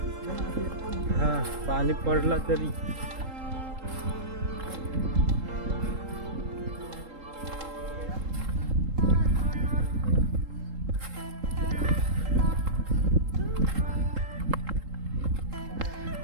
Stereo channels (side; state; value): left; late; 3.8 ms